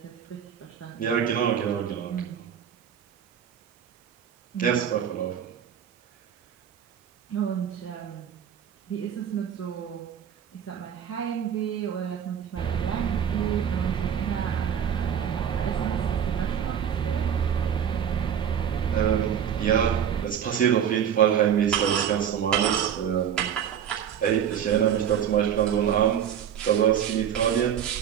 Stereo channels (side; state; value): left; quieter; 8.8 dB